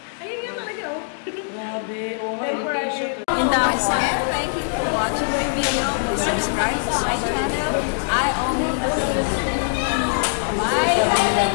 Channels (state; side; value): silent; right; digital silence